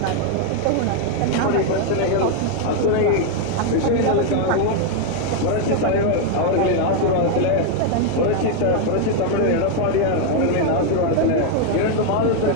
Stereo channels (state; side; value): different; both; correlation 0.00